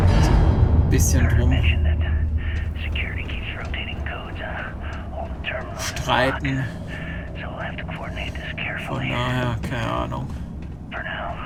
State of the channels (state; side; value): identical; both; correlation 1.00